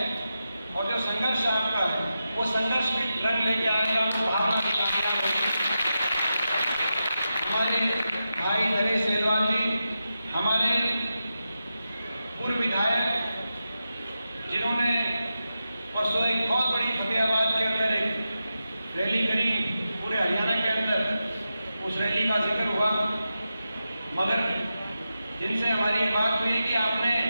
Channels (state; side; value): inverted; both; correlation -0.90